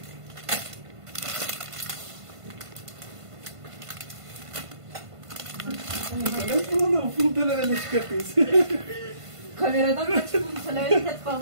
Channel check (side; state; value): left; late; 1.5 ms